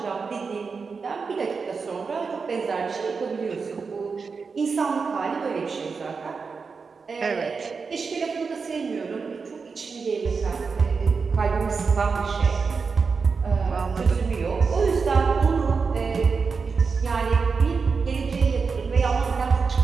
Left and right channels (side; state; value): left; quieter; 5.0 dB